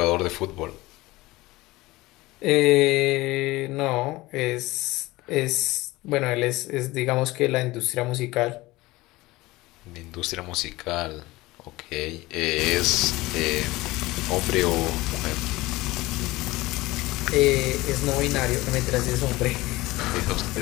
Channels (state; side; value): quieter; right; 19.8 dB